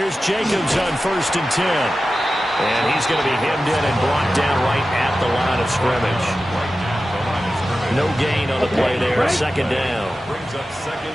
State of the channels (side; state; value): both; normal; correlation 0.94